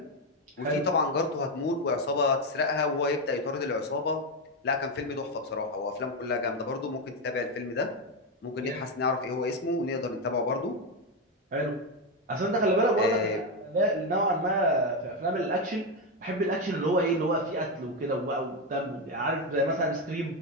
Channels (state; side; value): normal; both; correlation 0.08